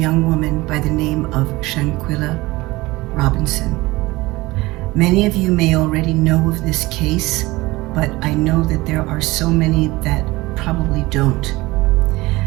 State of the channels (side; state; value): left; quieter; 20.4 dB